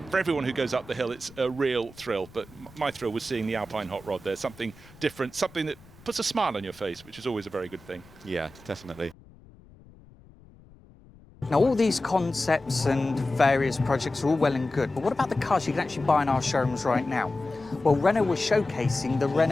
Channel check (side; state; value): left; noise; rumble, 24 dB below the sound